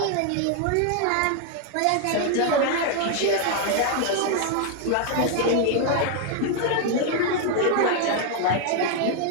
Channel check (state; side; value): different; both; correlation 0.00